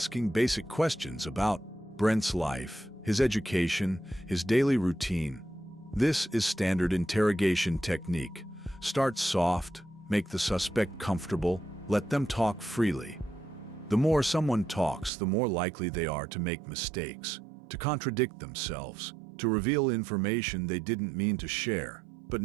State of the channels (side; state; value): left; drops out; at 15.1 s